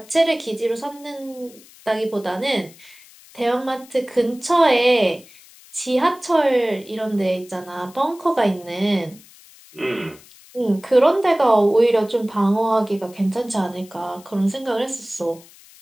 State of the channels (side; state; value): left; noise; hiss, 24 dB below the sound